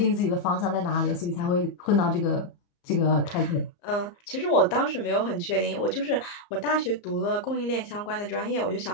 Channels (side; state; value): right; late; 34 ms